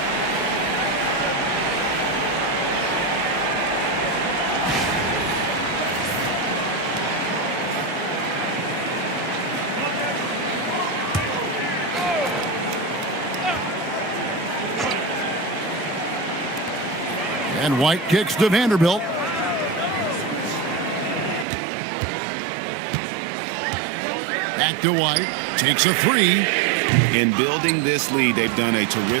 And White kicks to Vanderbilt. Back to White. Takes a 3. In building this lead, they've done a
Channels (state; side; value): drops out; left; at 21.5 s